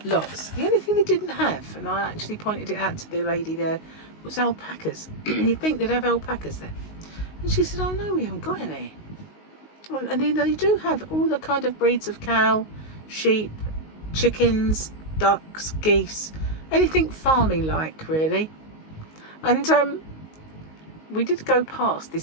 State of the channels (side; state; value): right; late; 19 ms